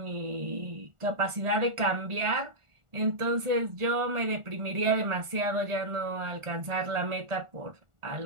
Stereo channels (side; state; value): left; late; 1.4 ms